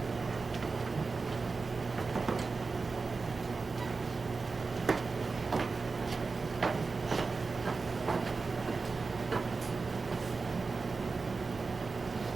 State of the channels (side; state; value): left; quieter; 4.2 dB